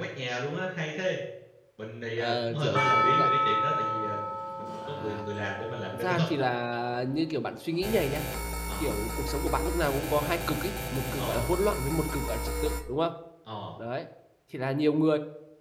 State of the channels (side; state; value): both; identical; correlation 1.00